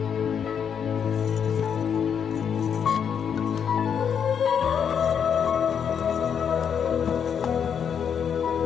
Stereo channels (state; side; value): quieter; right; 7.6 dB